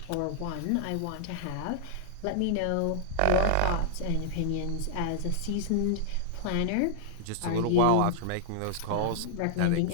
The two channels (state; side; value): different; both; correlation -0.01